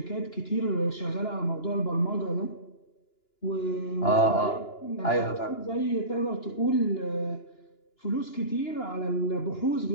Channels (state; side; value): late; right; 2.9 ms